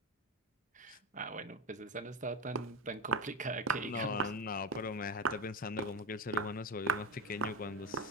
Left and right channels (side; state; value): both; normal; correlation 0.17